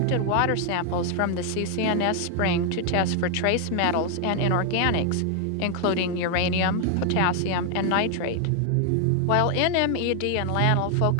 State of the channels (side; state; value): both; different; correlation 0.00